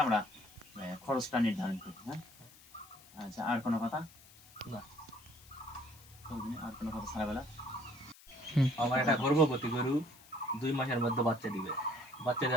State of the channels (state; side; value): noise; left; hiss, 23 dB below the sound